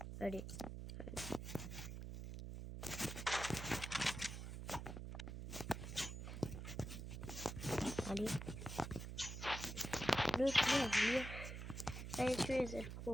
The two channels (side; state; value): right; noise; hum, 7 dB below the sound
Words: Allez. Allez. Le tuer. Allez, tuer cette pro.